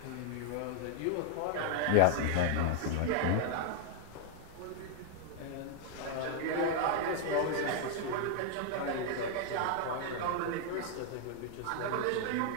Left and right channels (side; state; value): both; different; correlation 0.00